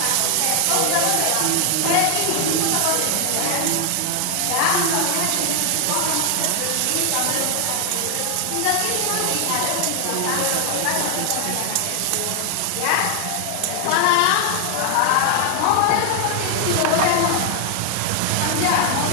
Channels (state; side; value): different; both; correlation 0.00